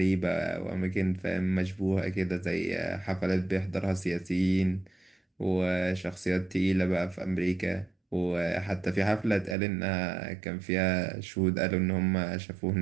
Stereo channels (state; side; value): drops out; left; at 9.6 s